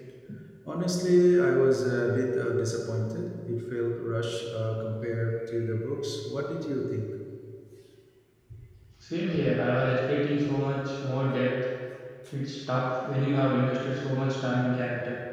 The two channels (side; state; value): both; identical; correlation 1.00